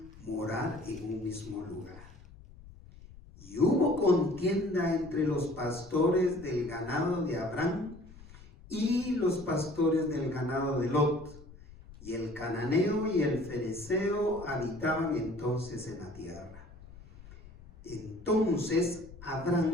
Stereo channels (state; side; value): noise; left; rumble, 19 dB below the sound